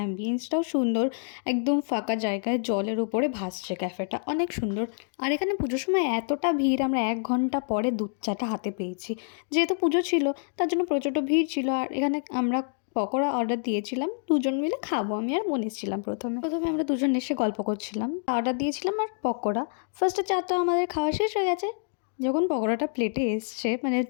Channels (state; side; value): silent; right; digital silence